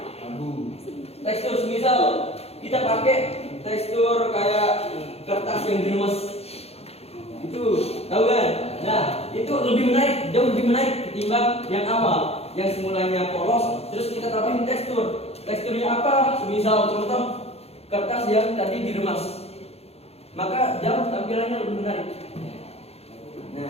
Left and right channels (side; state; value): right; late; 0.29 ms